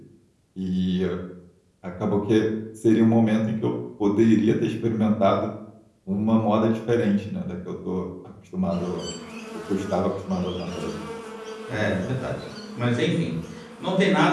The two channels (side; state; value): both; identical; correlation 1.00